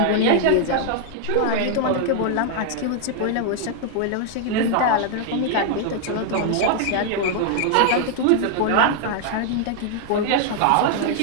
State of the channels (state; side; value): different; both; correlation 0.00